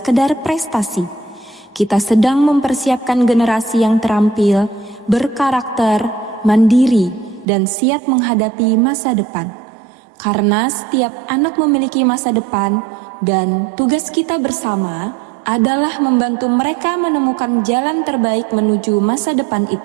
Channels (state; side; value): drops out; left; at 7.5 s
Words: prestasi. Kita sedang mempersiapkan generasi yang terampil, berkarakter, mandiri, dan siap menghadapi masa depan. Karena setiap anak memiliki masa depan, dan tugas kita bersama adalah membantu mereka menemukan jalan terbaik menuju masa depan